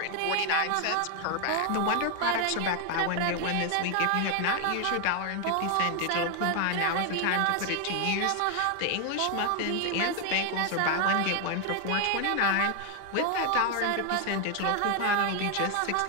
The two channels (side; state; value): both; different; correlation 0.01